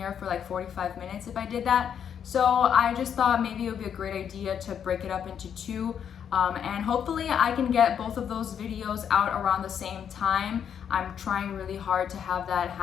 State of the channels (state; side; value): quieter; right; 8.3 dB